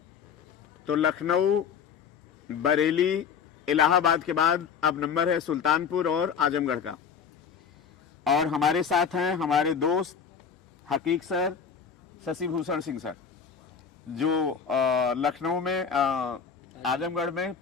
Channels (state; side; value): quieter; right; 6.7 dB